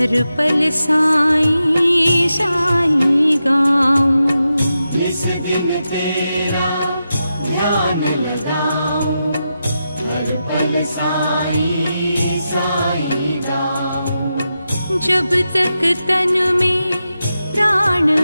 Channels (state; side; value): inverted; both; correlation -0.89